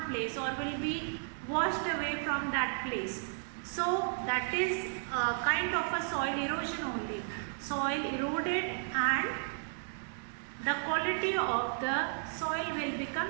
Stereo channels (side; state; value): left; silent; digital silence